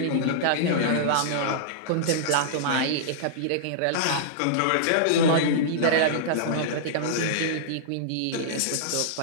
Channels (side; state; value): both; different; correlation -0.02